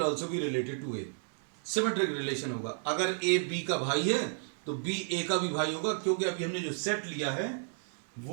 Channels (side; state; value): left; silent; 56 dB below the other